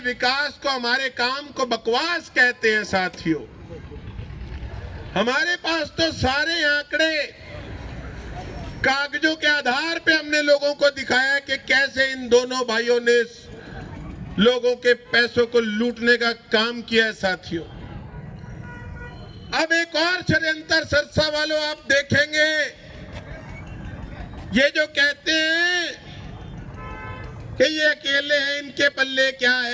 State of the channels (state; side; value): identical; both; correlation 1.00